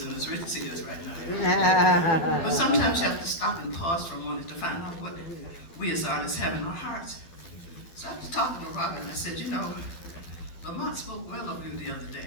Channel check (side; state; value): right; late; 12 ms